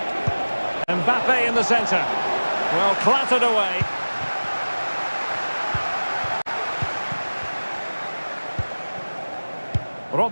Mbappe in the centre. Well, clattered away.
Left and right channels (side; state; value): both; inverted; correlation -1.00